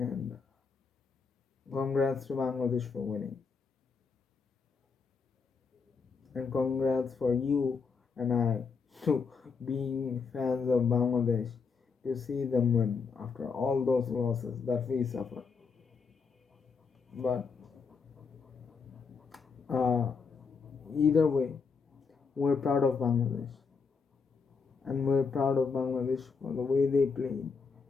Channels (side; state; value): right; quieter; 5.3 dB